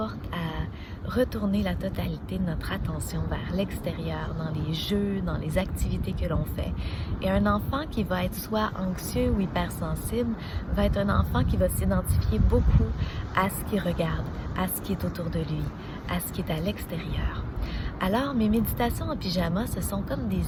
à retourner la totalité de notre attention vers l'extérieur, dans les jeux, dans les activités que l'on fait. Et un enfant qui va être soit anxieux ou hypersensible va être un enfant qui va s'identifier beaucoup à ce qu'il regarde, à ce qui est autour de lui, à ce qui est à l'extérieur. Alors, mes méditations en pyjama, ce sont comme des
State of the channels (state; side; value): identical; both; correlation 1.00